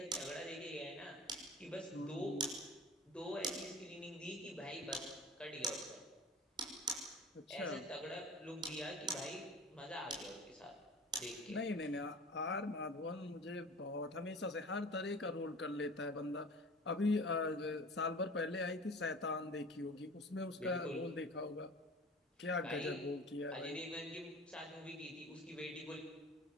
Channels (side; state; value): both; normal; correlation 0.39